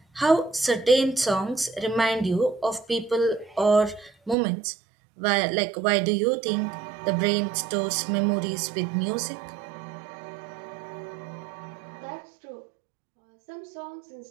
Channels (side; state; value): left; drops out; at 4.4 s